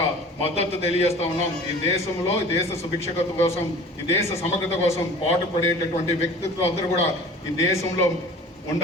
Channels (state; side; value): normal; both; correlation 0.43